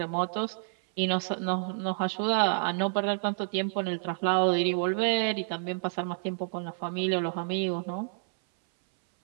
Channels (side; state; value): left; silent; 58 dB below the other